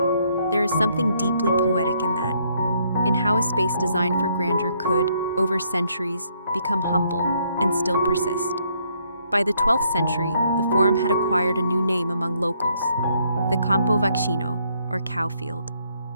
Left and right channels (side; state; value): both; inverted; correlation -0.70